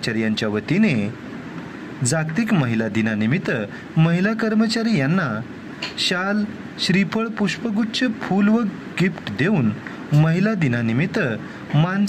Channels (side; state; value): both; identical; correlation 1.00